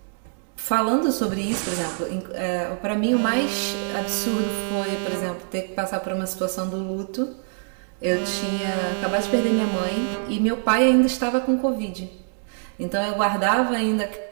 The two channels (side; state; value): left; silent; digital silence